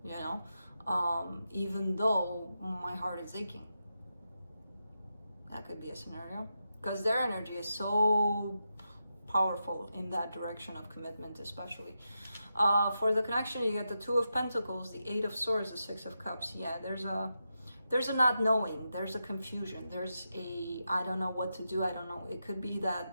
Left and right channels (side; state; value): both; inverted; correlation -0.87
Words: you know, even though my heart is aching. That could be a scenario, because their energy is so powerful in that direction of commitment, especially. For the connection, you get the Two of Pentacles, the Eight of Swords, the Six of Cups. Yeah, there's there's a not knowing, there's a confusion, there's a, I don't know what to do, I don't know. It could be